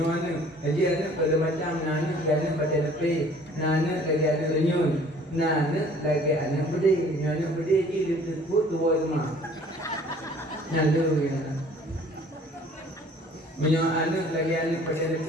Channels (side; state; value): both; normal; correlation 0.53